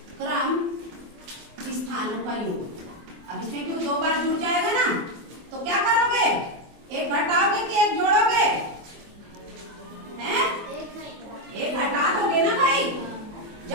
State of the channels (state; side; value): late; left; 24 ms